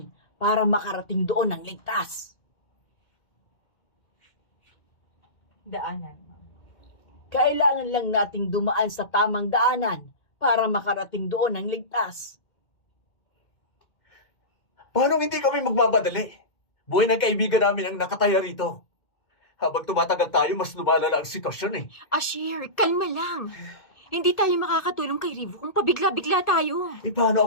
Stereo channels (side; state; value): right; late; 2.1 ms